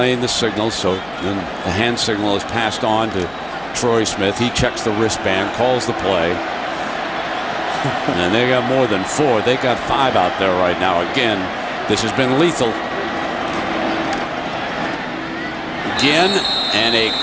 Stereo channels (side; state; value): left; noise; hum, 25 dB below the sound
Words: the signal, so then the hand signal is passed on to Troy Smith. He checks the wristband, calls the play. And they got more than 4. They got 5 out there right now. Again, this has been lethal. Again, and a